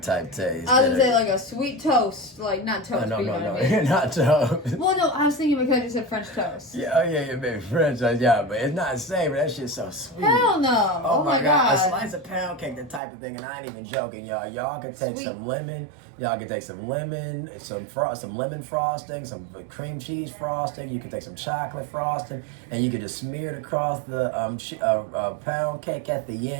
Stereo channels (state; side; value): drops out; left; at 13.0 s